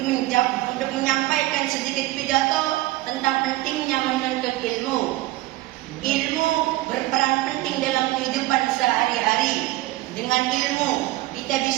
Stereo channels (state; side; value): quieter; left; 17.6 dB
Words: menyampaikan sedikit pidato tentang pentingnya menuntut ilmu. Ilmu berperan penting dalam kehidupan sehari-hari. Dengan ilmu kita